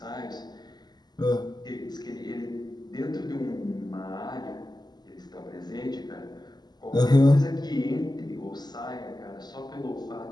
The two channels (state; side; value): late; right; 0.20 ms